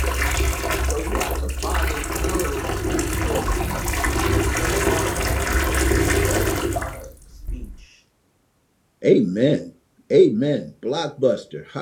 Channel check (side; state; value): both; identical; correlation 1.00